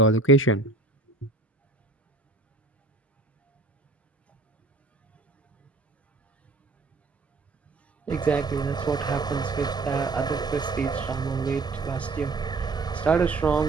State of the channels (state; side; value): quieter; left; 3.5 dB